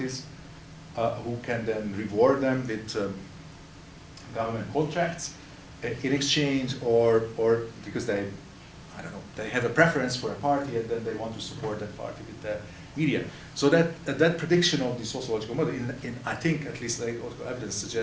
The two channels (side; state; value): both; identical; correlation 1.00